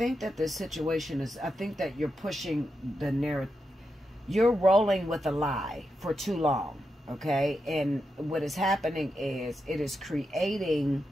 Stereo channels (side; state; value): both; normal; correlation 0.87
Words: that this situation is, I think that you're pushing the narrative. You're rolling with a lie for too long, okay? And what is happening is, it is creating